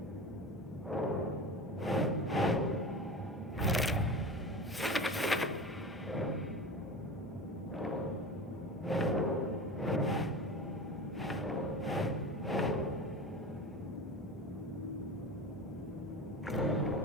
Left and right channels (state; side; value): normal; both; correlation 0.31